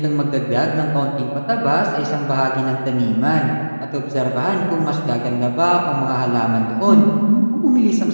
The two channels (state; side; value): inverted; both; correlation -1.00